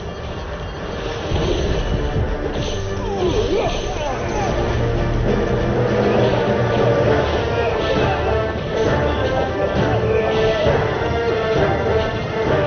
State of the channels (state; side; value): identical; both; correlation 1.00